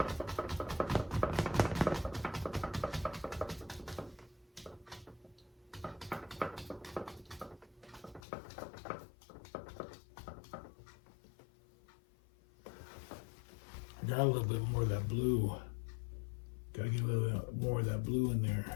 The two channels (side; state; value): right; drops out; at 8.2 s